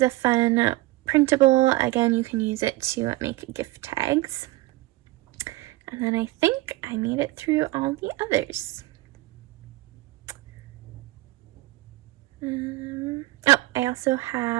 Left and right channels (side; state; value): left; quieter; 19.2 dB